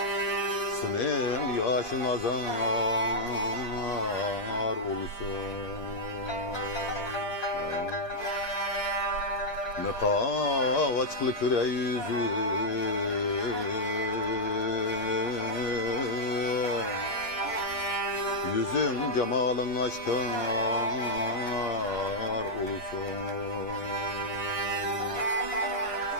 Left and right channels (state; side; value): late; right; 8.4 ms